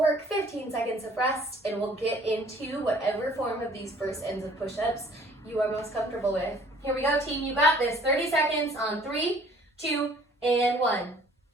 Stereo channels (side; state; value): both; normal; correlation 0.55